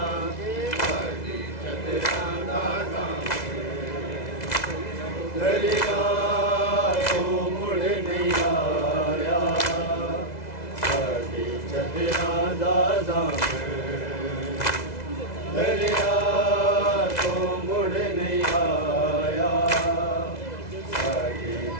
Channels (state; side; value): late; right; 2.0 ms